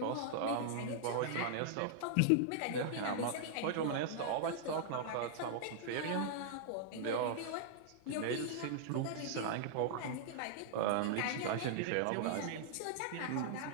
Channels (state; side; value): different; both; correlation -0.01